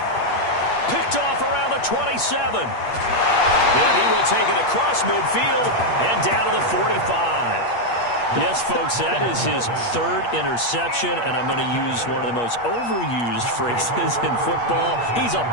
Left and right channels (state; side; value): late; right; 8.4 ms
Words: Picked off around the 27. And he will take it across midfield and down to the 45. Yes, folks, that is his third interception, and I'm going to use one of the most overused phrases in football. He's a